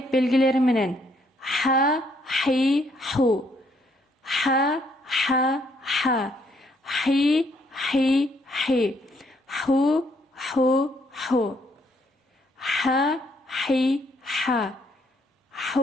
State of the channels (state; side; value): normal; both; correlation 0.70